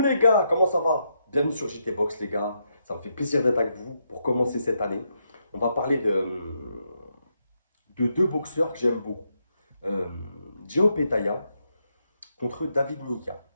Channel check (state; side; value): inverted; both; correlation -0.80